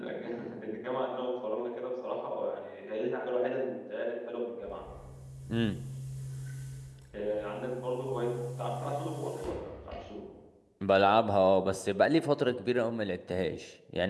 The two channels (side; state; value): both; identical; correlation 1.00